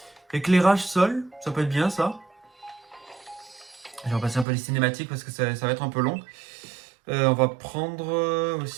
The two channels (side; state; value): left; drops out; at 4.5 s